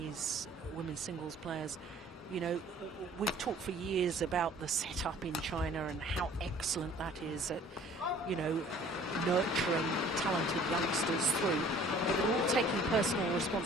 women's singles players, you know, we've talked for years about the setup in China and how excellent that is at, you know, nurturing talented youngsters through, but they're all taking personal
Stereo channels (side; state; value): both; normal; correlation 0.52